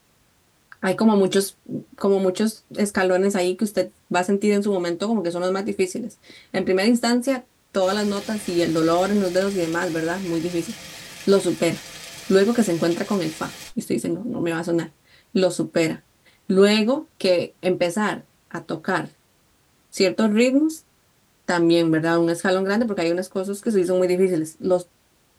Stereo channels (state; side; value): identical; both; correlation 1.00